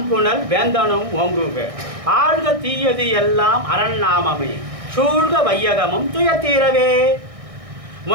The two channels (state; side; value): late; left; 1.6 ms